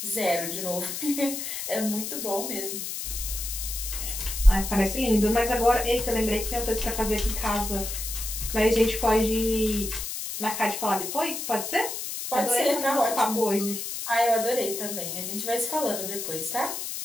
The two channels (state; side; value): noise; left; hiss, 5 dB below the sound